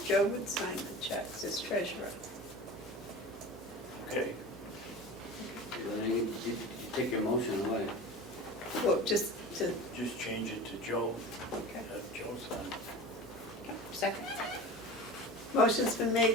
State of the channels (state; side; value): normal; both; correlation 0.34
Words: Joe would sign the checks as treasurer. Okay, Then you take your motion away. Well, just to, just change it to Joe, okay. have Joe sign. Second. Motion's been